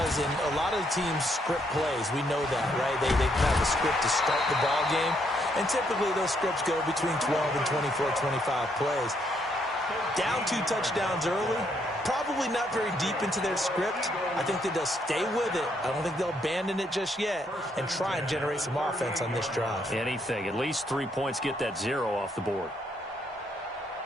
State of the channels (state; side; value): normal; both; correlation 0.73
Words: and a lot of the teams script plays. We know that, right? They have a script to start the ball game, and typically those scripts go between 12 and 24, 25 plays. Down 2 touchdowns early, probably not very deep into their script. I think that they'll stay with it. I don't think they'll abandon it just yet and try and generate some offense on this drive. Anything. At least 3 points, get that 0 off the board.